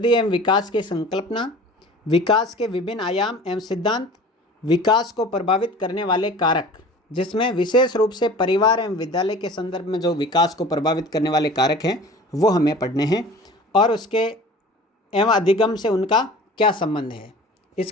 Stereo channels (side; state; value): both; normal; correlation 0.42